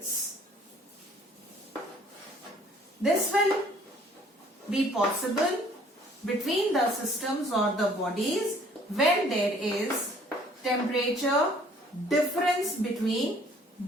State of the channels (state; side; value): normal; both; correlation 0.57